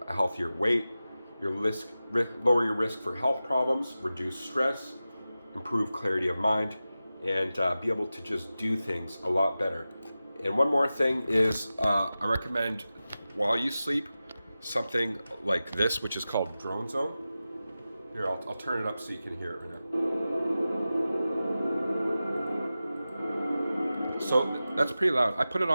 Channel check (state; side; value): inverted; both; correlation -0.94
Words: a healthier weight. Lower your risk for health problems, reduce stress, improve clarity of mind, and be able to just do things a lot better. And one more thing is I recommend, while you sleep, something like this, which is called Drone Zone. Here, I'll turn it up so you can hear it right now. So that's pretty loud. I put it